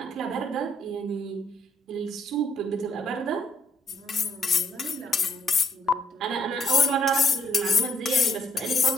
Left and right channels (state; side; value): normal; both; correlation 0.71